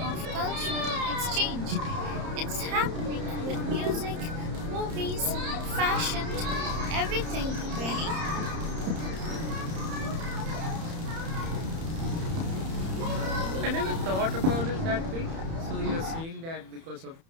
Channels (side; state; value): left; late; 30 ms